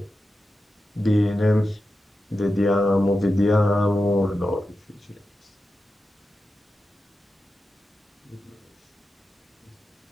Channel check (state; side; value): normal; both; correlation 0.91